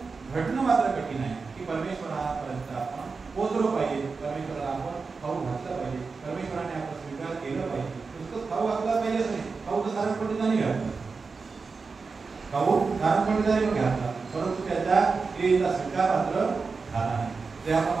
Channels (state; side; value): quieter; left; 4.6 dB